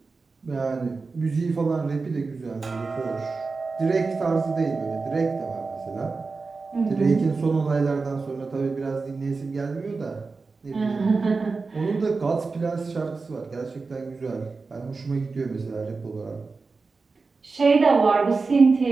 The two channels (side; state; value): left; quieter; 4.2 dB